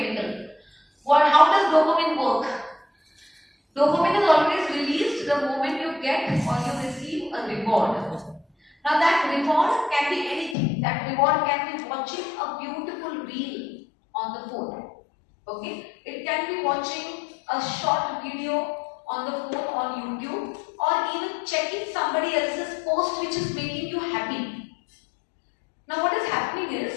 How does dopamine work? Dopamine is always released the moment you get or you receive a reward. Now that reward can be anything. That reward can be watching a beautiful reel on the phone. Okay? It can be watching a short video on the phone on YouTube, or even checking somebody else's post which is making you happy. Now what is happening is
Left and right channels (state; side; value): drops out; right; at 10.6 s